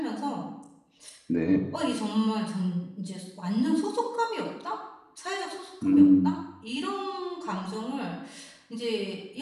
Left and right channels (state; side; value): identical; both; correlation 1.00